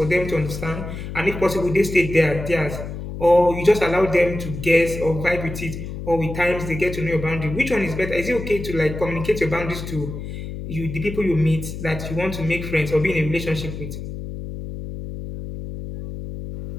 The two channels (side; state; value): left; noise; hum, 8 dB below the sound